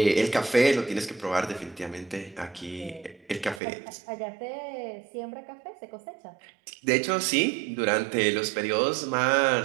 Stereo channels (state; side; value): drops out; left; at 3.6 s